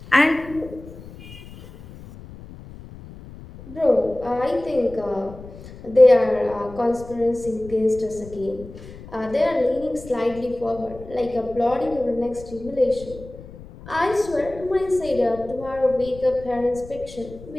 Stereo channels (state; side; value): noise; left; rumble, 17 dB below the sound